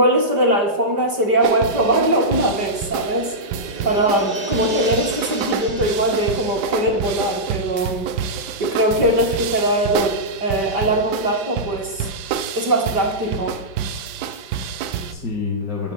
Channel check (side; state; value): left; late; 5.0 ms